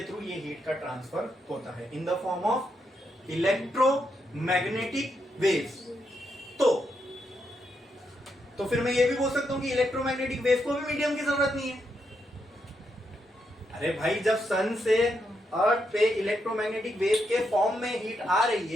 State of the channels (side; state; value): both; normal; correlation 0.81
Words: थ्रू ये हीट का ट्रांसफर होता है इन the form of electromagnetic waves. तो फिर मैं ये भी बोल सकता हूं कि इलेक्ट्रोमैग्नेटिक वेव को भी मीडियम की जरूरत नहीं है। अरे भाई, जब सन से अर्थ पे इलेक्ट्रोमैग्नेटिक वेव के फॉर्म में हीट आ रही